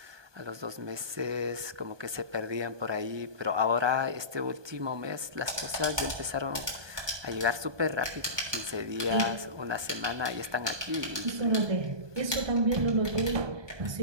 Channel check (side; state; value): left; late; 1.2 ms